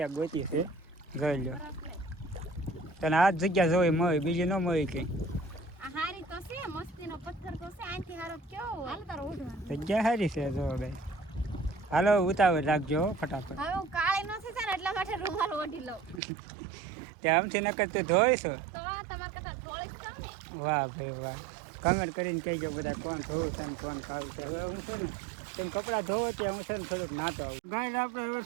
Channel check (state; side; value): drops out; left; at 16.2 s